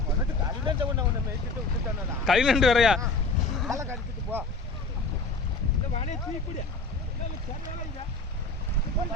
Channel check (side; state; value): right; quieter; 3.5 dB